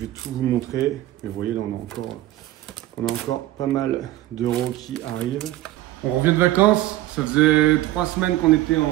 tout vous montrer. Mais vous voyez, là, on a encore pas mal d'euros qui arrivent. On revient de vacances, ça faisait 3 semaines qu'on était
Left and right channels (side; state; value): left; quieter; 15.3 dB